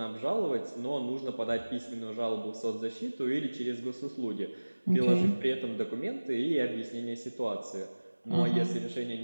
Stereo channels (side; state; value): both; inverted; correlation -1.00